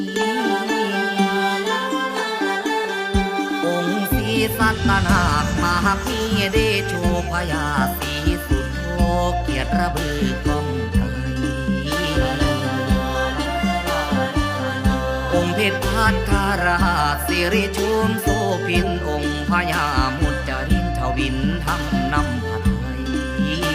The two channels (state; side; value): identical; both; correlation 1.00